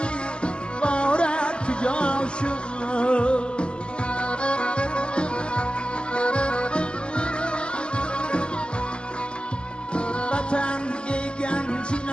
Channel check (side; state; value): right; late; 0.050 ms